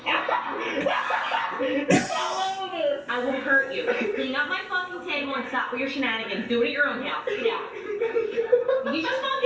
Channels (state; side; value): identical; both; correlation 1.00